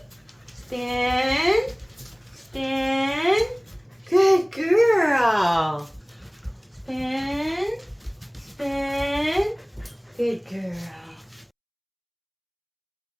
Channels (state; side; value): identical; both; correlation 1.00